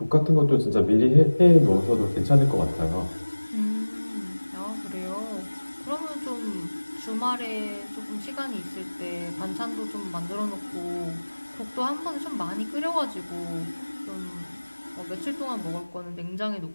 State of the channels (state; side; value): inverted; both; correlation -1.00